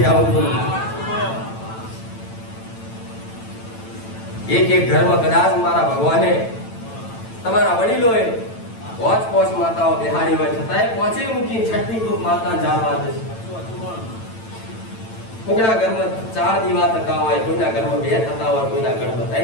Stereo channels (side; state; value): right; late; 9.0 ms